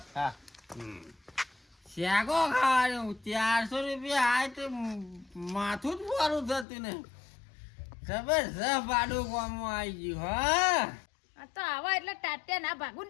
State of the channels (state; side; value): drops out; right; at 6.7 s